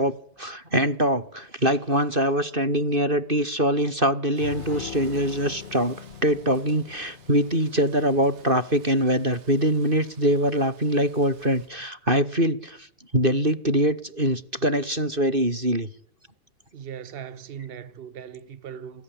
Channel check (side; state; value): left; late; 2.6 ms